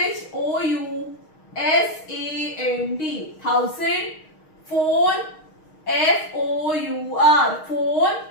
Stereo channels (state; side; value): late; right; 6.4 ms